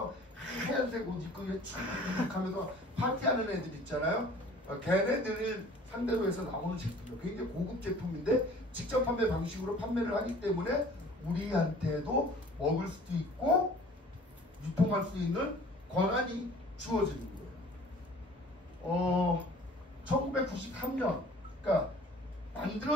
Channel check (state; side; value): normal; both; correlation 0.49